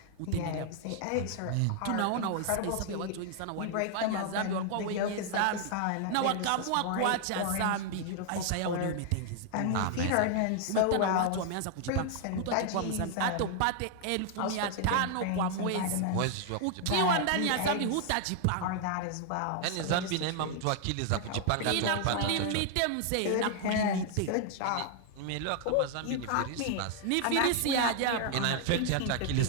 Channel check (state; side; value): different; both; correlation 0.00